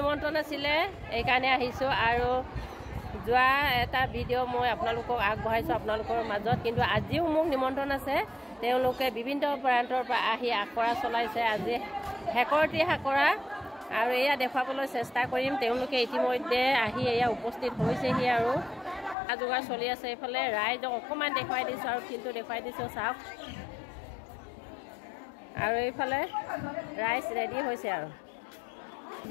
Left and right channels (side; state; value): right; drops out; at 19.2 s